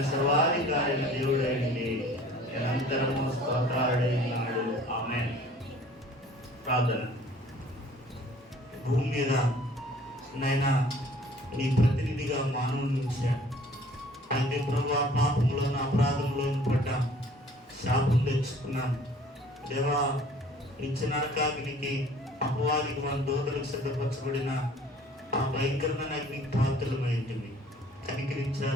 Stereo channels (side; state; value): both; normal; correlation 0.52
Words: సర్వాధికారైన దేవుడైంది, నిరంతరము స్తోత్రాలుడైనాడు. ఆమేన్. ప్రార్థన. భూమి మీద నైనా నీ ప్రతినిధిగా మానవుని ఉంచాడు. అంటే ప్రభా, పాపంలోను అపరాధంలోను పడ్డాం, శాపం తెచ్చుకున్నాం. దేవా, నిత్య నరకాగ్నికి అపవాదికి మన దోతలకు సిద్ధపరచబడిన ఆ భయంకరమైన అగ్నికి పాత్రలమైంటివి.